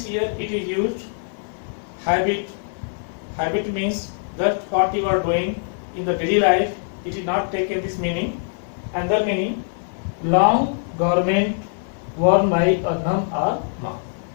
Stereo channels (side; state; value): right; silent; 64 dB below the other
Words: here it is used. Habit means that what you are doing in the daily life, it is not taken this meaning. Another meaning, long garment worn by a nun or monk.